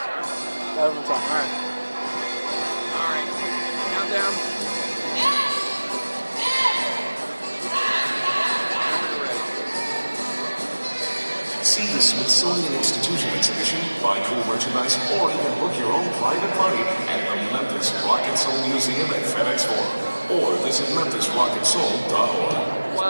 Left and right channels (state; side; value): inverted; both; correlation -1.00